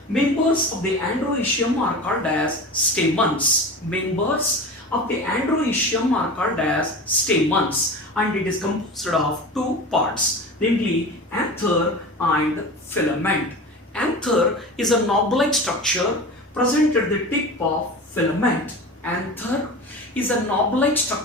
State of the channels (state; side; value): normal; both; correlation 0.32